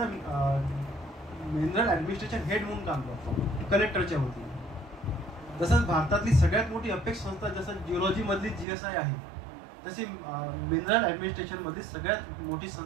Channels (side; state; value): left; drops out; at 8.7 s